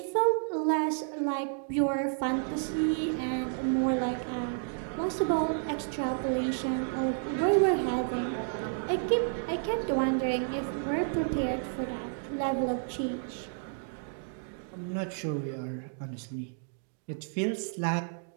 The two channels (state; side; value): silent; left; digital silence